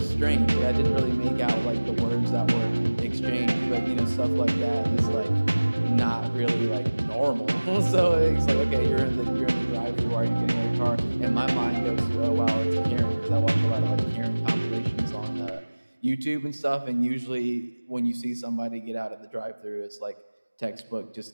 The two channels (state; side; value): inverted; both; correlation -1.00